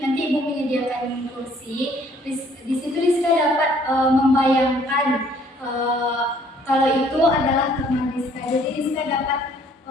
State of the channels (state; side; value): normal; both; correlation 0.60